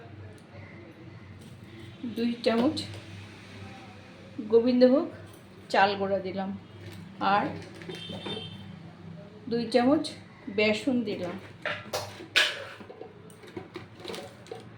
2 চামচ গোবিন্দভোগ চাল গুঁড়া দিলাম আর 2 চামচ বেসন দিলাম।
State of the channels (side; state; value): both; identical; correlation 1.00